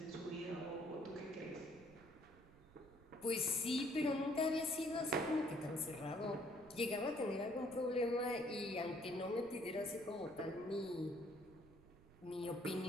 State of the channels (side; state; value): right; noise; rumble, 23 dB below the sound